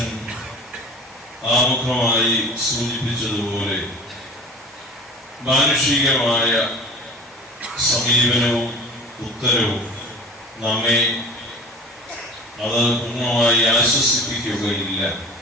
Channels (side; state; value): both; normal; correlation 0.40